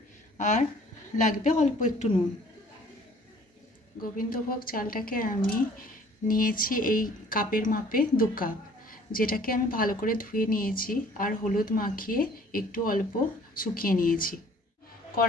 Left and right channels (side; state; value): both; normal; correlation 0.54